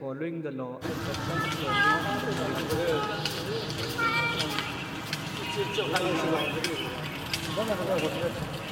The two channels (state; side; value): identical; both; correlation 1.00